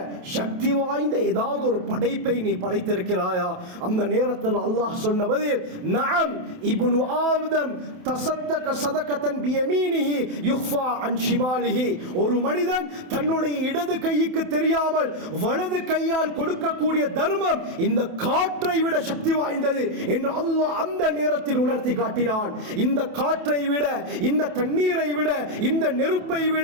சக்தி வாய்ந்த ஏதாவது ஒரு படைப்பை நீ படைத்திருக்கிறாயா? அந்த நேரத்தில் அல்லாஹ் சொன்ன பதில், நஅம் இப்னு ஆதம் தஸத்தக ஸதகத்தன் பியமீனிஹி யுஃபா அன் ஷிமாலிஹி, ஒரு மனிதன் தன்னுடைய இடது கைக்கு தெரியாமல் வலது கையால் கொடுக்கக்கூடிய தர்மம் இந்த காற்றை விட சக்தி வாய்ந்தது என்று அல்லாஹ் அந்த நேரத்தில் உணர்த்தி காட்டினான். இந்த காற்றை விட, இந்த தண்ணீரை விட, இந்த நெருப்பை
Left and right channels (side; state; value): left; late; 28 ms